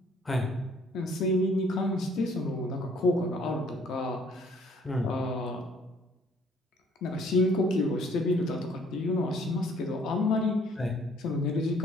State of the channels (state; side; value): normal; both; correlation 0.61